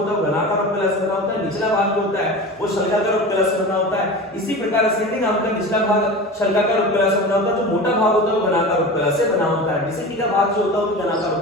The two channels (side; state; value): both; normal; correlation 0.31